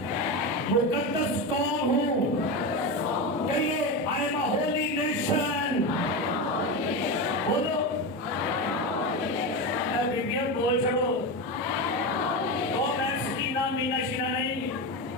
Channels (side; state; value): both; normal; correlation 0.18